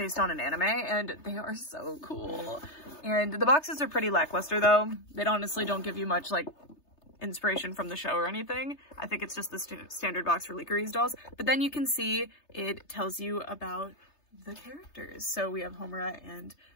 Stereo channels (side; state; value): right; late; 3.3 ms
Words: on an anime, and they are so cool. And the boxes are pretty lackluster though. They honestly don't give you much like inspiration from the show or anything. I think it's just the standard box for LICCARIZE dolls. But then you can see it tells you about the characters. So we have Homura and